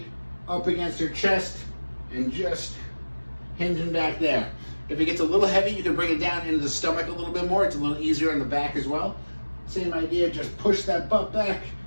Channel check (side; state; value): both; inverted; correlation -1.00